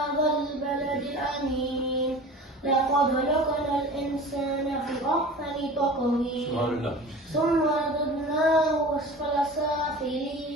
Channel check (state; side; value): normal; both; correlation 0.38